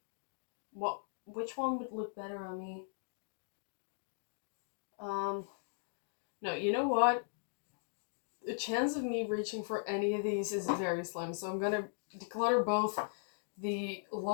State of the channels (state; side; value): silent; right; digital silence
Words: Which one would look better on me? No, you know what? The chance of me reaching for any of these is very slim, so I'm gonna declutter both the